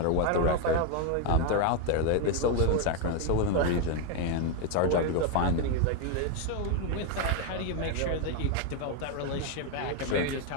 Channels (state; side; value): different; both; correlation 0.01